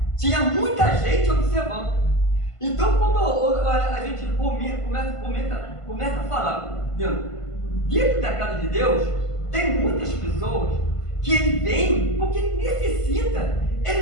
Tinha muita gente observando. Então, quando a gente começa a falar, dentro da casa de Deus, tem muitas pessoas que ele vem porque ele necessita,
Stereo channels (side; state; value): right; late; 1.5 ms